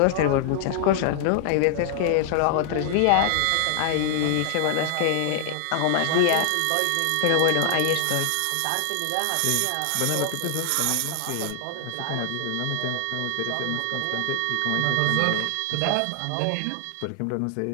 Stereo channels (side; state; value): both; different; correlation 0.00